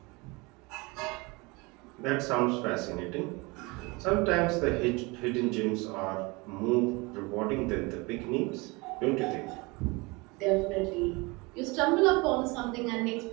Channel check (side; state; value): left; quieter; 25.9 dB